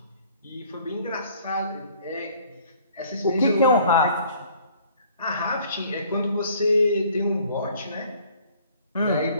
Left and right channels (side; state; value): both; inverted; correlation -0.56